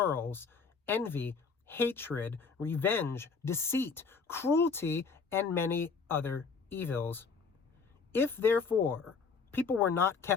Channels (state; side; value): quieter; right; 5.1 dB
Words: envy, hatred, revenge, deceit, cruelty, and many other evils. If, therefore, people were not